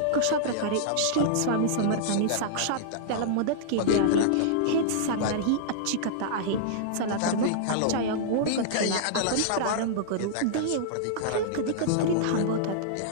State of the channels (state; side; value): different; both; correlation -0.02